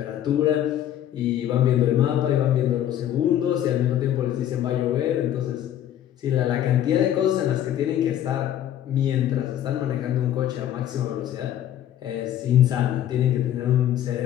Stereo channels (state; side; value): quieter; right; 11.3 dB